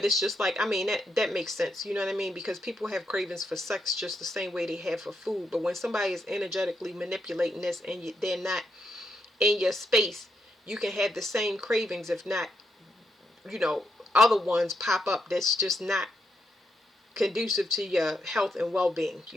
it's just like, I mean, that makes sense. You know what I mean? Because people have cravings for sex just the same way they have for food. But when somebody is energetically manipulating this and they're not in your space, you can have the same cravings, if not, other ones pop up that's just not conducive to your health and well-being.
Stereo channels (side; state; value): both; normal; correlation 0.81